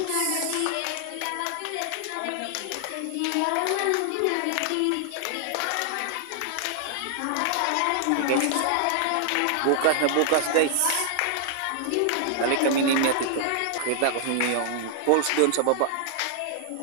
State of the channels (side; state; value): both; different; correlation -0.01